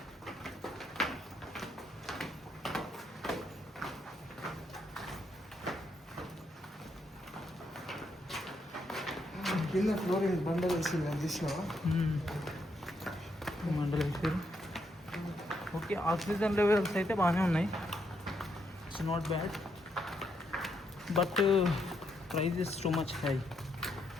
కింద ఫ్లోరింగ్ బండలు వేసింది, అది చూసినావా? బండలు వేసారు. ఓకే, ఆక్సిజన్ లెవెల్స్ అయితే బాగానే ఉన్నాయి. It's not bad, but price is too much high.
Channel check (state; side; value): normal; both; correlation 0.77